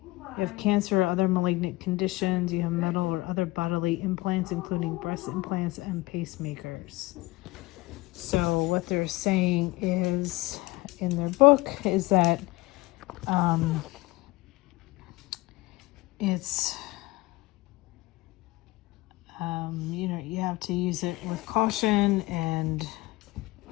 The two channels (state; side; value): quieter; right; 20.9 dB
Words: You have cancer or other malignant conditions. You have metal or other bodily implants, including breast implants and pacemakers. So what they're saying is, in their book, is that it's, you have to use it with caution, and